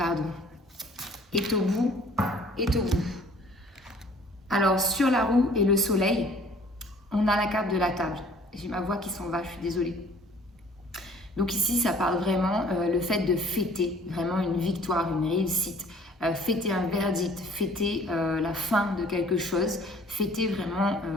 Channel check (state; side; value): normal; both; correlation 0.54